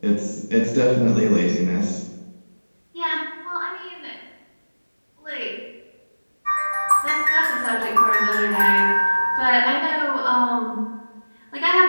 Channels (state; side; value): inverted; both; correlation -1.00